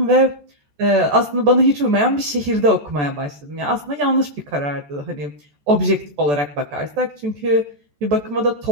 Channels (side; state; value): left; late; 14 ms